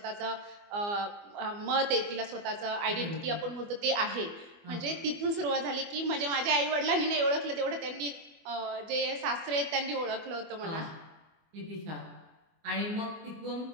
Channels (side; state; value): left; late; 24 ms